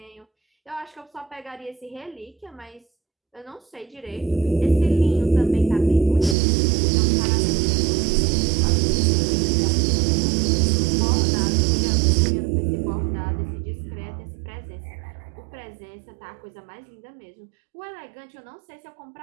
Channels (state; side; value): drops out; left; at 6.4 s